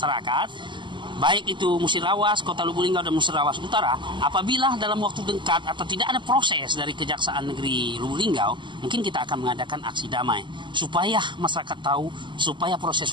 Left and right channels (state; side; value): late; left; 0.23 ms